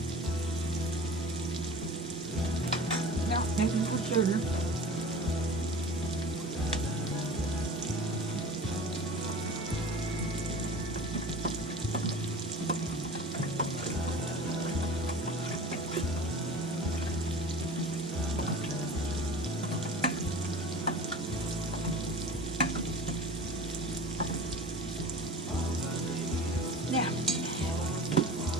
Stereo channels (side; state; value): both; normal; correlation 0.37